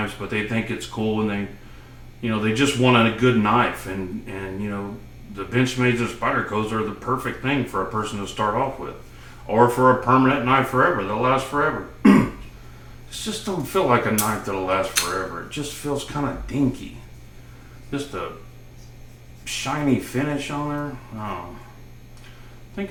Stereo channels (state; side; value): identical; both; correlation 1.00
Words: but they think it's cool and they, you know, they just want a good knife. And you know, the Benchmades or Spydercos are the perfect thing for a person to start off with. Or for a permanent knife forever, that'll last forever. It just don't feel like a knife that'll last forever. It just feels kind of dinky. Just a shiny finish on there. Oh. I think